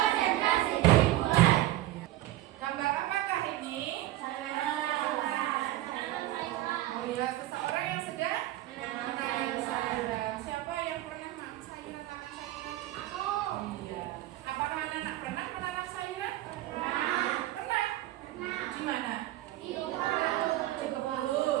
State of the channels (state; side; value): quieter; left; 15.3 dB